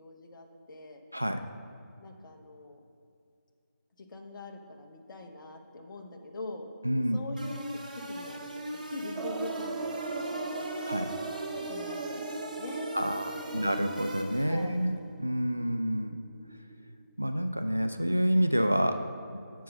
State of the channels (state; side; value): inverted; both; correlation -0.91